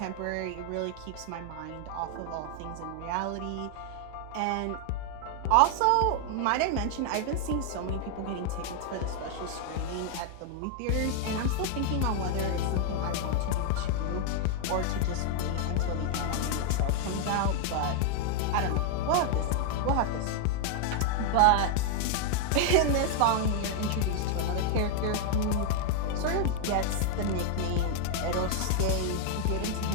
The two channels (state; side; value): different; both; correlation 0.00